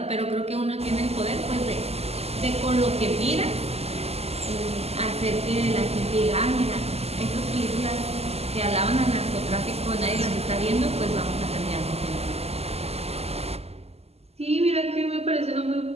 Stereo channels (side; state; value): left; late; 0.30 ms